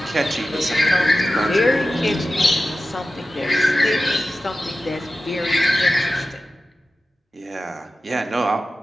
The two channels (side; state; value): both; normal; correlation 0.93